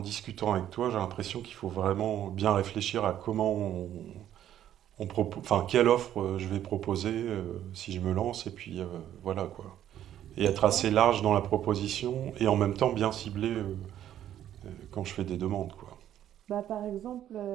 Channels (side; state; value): left; quieter; 11.3 dB